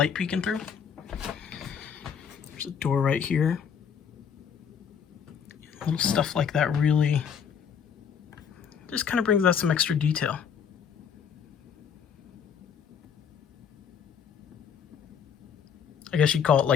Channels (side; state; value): right; quieter; 7.4 dB